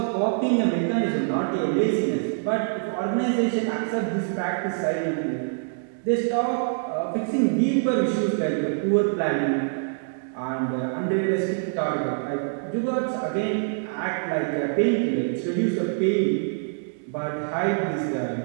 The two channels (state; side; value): silent; left; digital silence